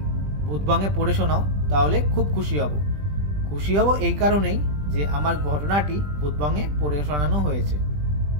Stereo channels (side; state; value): left; late; 20 ms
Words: ভূতবঙ্গে পড়ে শোনাও তাহলে খুব খুশি হব। খুশি হব এই কারণেই যে আমার ঘটনাটি ভূতবঙ্গে পড়ে শোনানো হয়েছে।